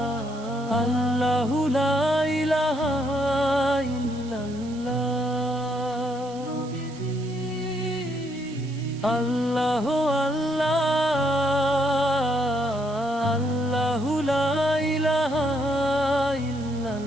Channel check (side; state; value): right; noise; hiss, 21 dB below the sound